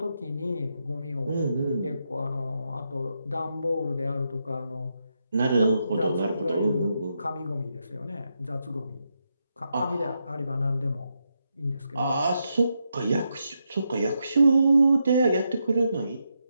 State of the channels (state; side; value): inverted; both; correlation -0.83